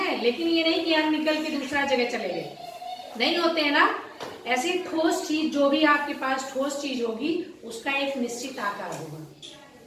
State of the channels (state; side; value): identical; both; correlation 1.00